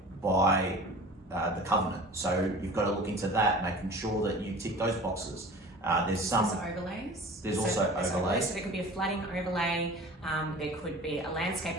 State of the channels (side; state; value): both; normal; correlation 0.41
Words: by the covenant. So you've got to look into that, making sure that you tick those boxes. There's overlays. There's also overlays. So there could be a flooding overlay, there could be a